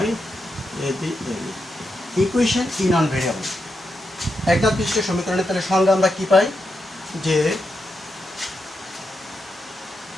equation in on variable। একঘাত বিশিষ্ট সমীকরণের তাহলে সংজ্ঞা আমরা কি পাই, যে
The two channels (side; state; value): both; normal; correlation 0.85